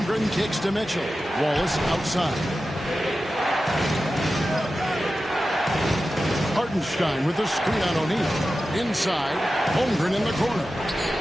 kicks to Mitchell. Wallace outside. Hartenstein with the screen on O'Neal. Inside, Holmgren in the corner.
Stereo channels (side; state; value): both; normal; correlation 0.93